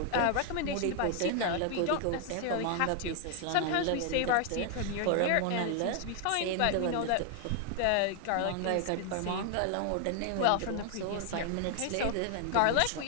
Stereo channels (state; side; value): different; both; correlation 0.00